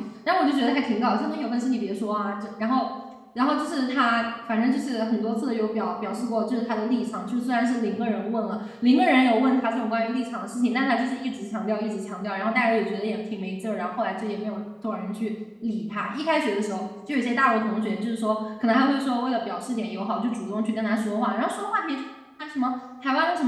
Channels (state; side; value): identical; both; correlation 1.00